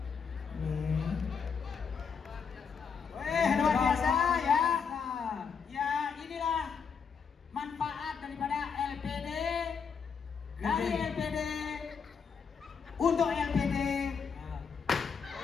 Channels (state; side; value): quieter; right; 6.2 dB